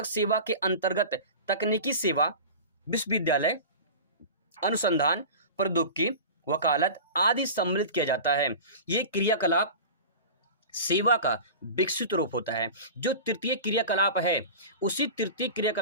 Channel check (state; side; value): inverted; both; correlation -0.33